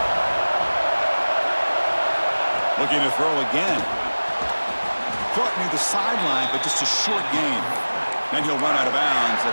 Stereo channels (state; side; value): inverted; both; correlation -1.00